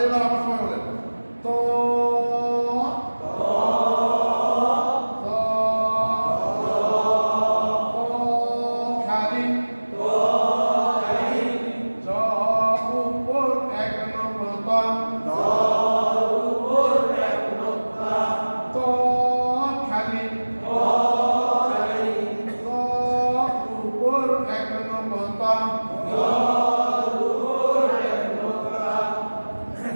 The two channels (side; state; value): both; inverted; correlation -1.00